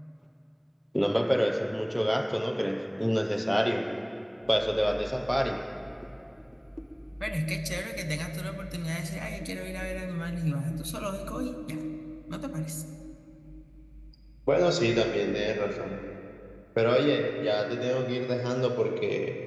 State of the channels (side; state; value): both; identical; correlation 1.00